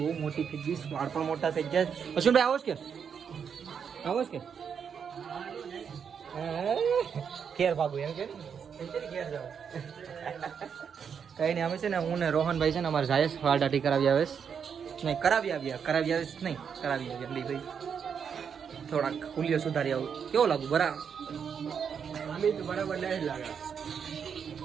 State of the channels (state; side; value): quieter; left; 7.1 dB